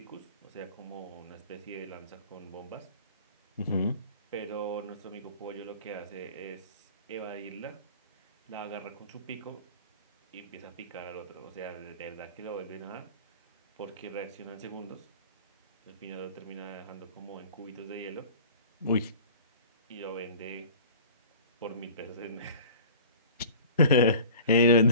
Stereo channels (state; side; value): inverted; both; correlation -0.43